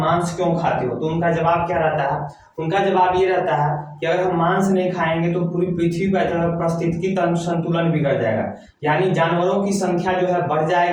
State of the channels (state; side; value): identical; both; correlation 1.00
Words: क्यों खाते हो, तो उनका जवाब क्या रहता है? उनका जवाब ये रहता है कि अगर हम मांस नहीं खाएंगे तो पूरी पृथ्वी का पारिस्थितिकी तंत्र संतुलन बिगड़ जाएगा, यानी जानवरों की संख्या जो है बढ़